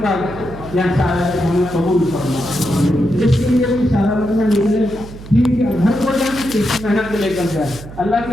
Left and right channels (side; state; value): right; noise; hum, 15 dB below the sound